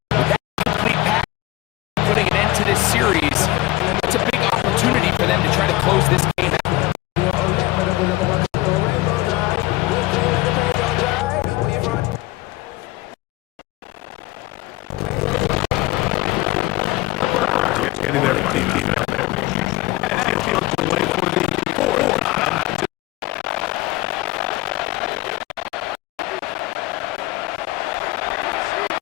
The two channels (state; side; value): quieter; right; 19.1 dB